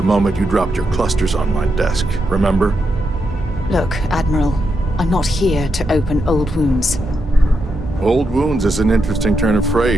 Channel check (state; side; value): normal; both; correlation 0.83